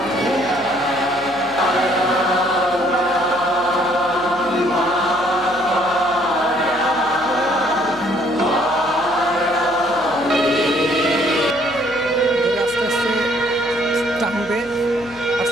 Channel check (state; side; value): noise; left; hum, 23 dB below the sound